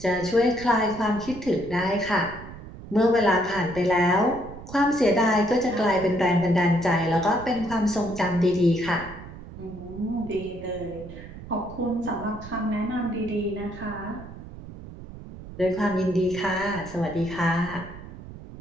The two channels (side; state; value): right; noise; rumble, 14 dB below the sound